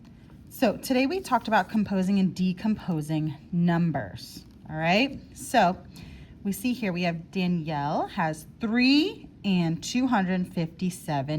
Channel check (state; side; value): identical; both; correlation 1.00